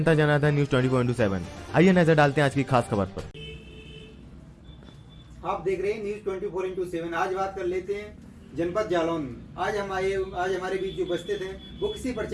जनार्दन न्यूज 24/7। आइए नजर डालते हैं आज की खास खबर पर। आप देख रहे हैं न्यूज 24/7। आज बात कर लेते हैं जनपद जालौन में। आज हमारे बीच जो उपस्थित हैं वो किसी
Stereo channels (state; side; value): identical; both; correlation 1.00